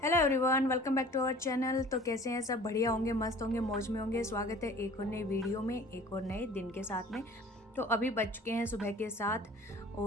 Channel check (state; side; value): normal; both; correlation 0.47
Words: Hello everyone, welcome back to our channel. तो कैसे हैं सब? बढ़िया होंगे, मस्त होंगे, मौज में होंगे। स्वागत है एक और नई वीडियो में, एक और नए दिन के साथ में। तो अभी बज चुके हैं सुबह के 7